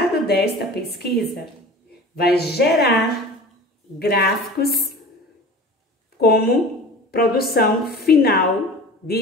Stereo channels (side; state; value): both; normal; correlation 0.38